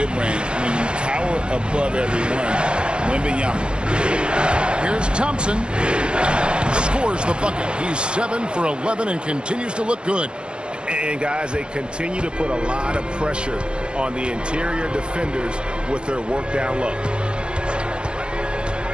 when you tower above everyone. Wembanyama. Here's Thompson. Scores the bucket. He's 7 for 11 and continues to look good. And, guys, they continue to put a lot of pressure on the interior defenders with their work down low.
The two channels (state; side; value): late; left; 0.053 ms